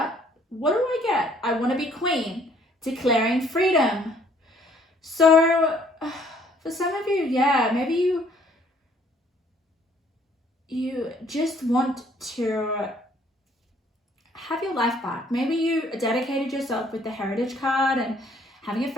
what do I get? I want to be queen, declaring freedom. So for some of you, yeah, maybe you just want to have your life back. Maybe you dedicated yourself with the heritage card and having a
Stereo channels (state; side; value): normal; both; correlation 0.62